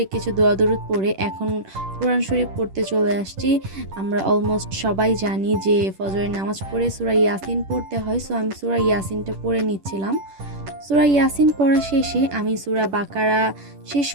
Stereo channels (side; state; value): left; late; 10 ms